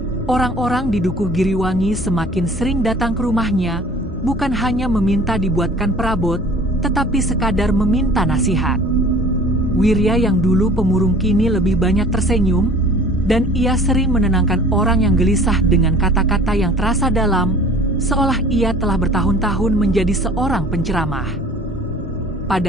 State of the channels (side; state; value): both; normal; correlation 0.48